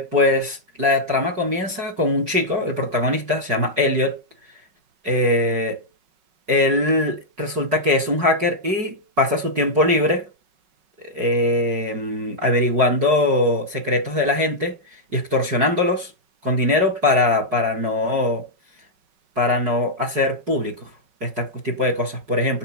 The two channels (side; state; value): left; late; 5.4 ms